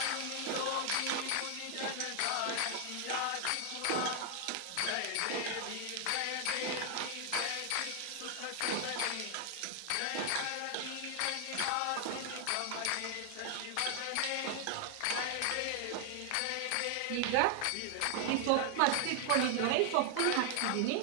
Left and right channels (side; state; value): both; different; correlation 0.00